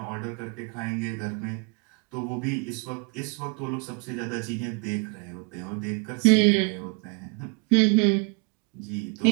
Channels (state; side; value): quieter; left; 33.7 dB